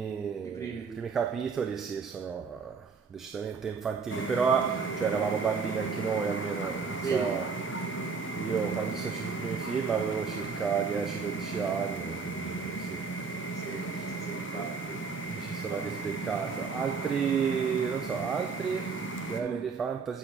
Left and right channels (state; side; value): quieter; left; 5.2 dB